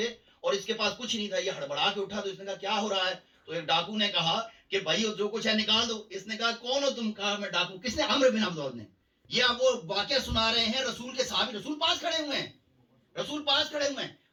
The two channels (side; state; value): both; identical; correlation 1.00